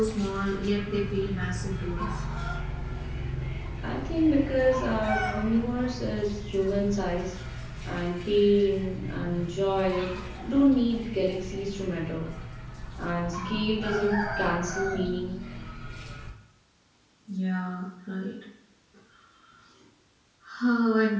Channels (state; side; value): identical; both; correlation 1.00